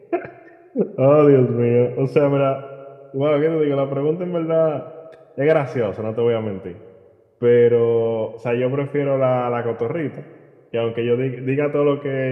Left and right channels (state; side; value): identical; both; correlation 1.00